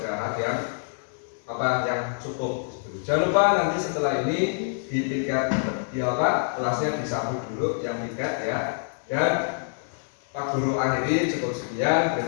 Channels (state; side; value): silent; right; digital silence